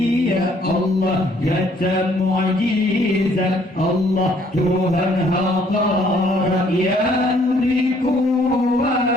Allah kata mu'jizat, Allah Tuhan hadarat yang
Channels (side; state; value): both; normal; correlation 0.63